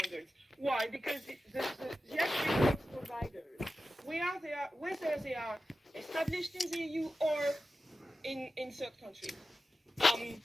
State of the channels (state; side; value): normal; both; correlation 0.93